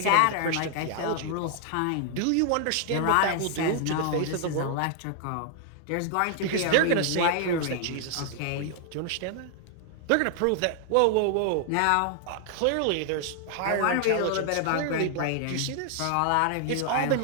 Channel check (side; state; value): both; different; correlation 0.00